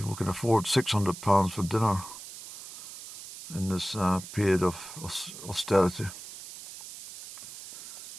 can afford £600 for dinner in this period of austerity.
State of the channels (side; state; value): right; noise; hiss, 13 dB below the sound